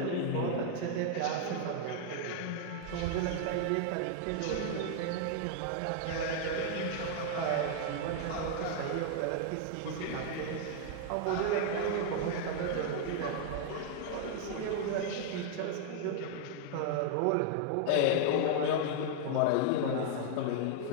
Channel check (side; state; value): both; different; correlation 0.00